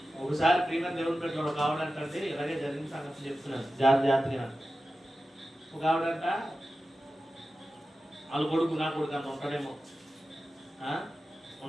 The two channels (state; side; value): normal; both; correlation 0.94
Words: ఒకసారి ప్రియమైన దేవుని పెట్టాడు ఒక ఆవిడంటే ఇలాగే జరిగిన సంగతి చెప్తున్నాను జాగ్రత్తగా. ఒక ఆవిడంట వాళ్ళ కొడుకు నా కొడుకు అంత ఉంటాడేమో